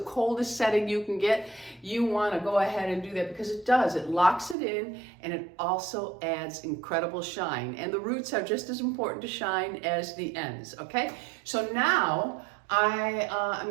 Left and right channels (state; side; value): drops out; left; at 4.5 s